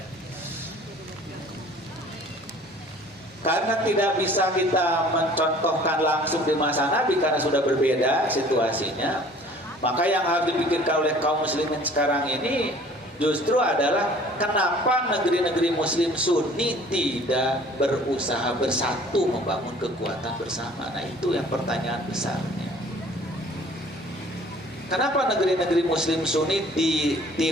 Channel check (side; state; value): both; normal; correlation 0.51